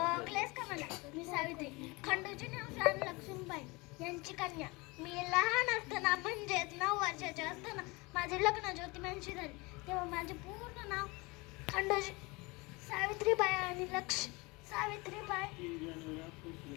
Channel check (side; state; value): right; quieter; 25.2 dB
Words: ओळखलेस का मला? मी सावित्री, खंडोजी राणी लक्ष्मीबाई यांची कन्या. मी लहान असताना म्हणजेच 9 वर्षाचे असताना माझे लग्न ज्योतिबांशी झाले. तेव्हा माझे पूर्ण नाव खंडोजी सावित्रीबाई आणि सावित्रीबाई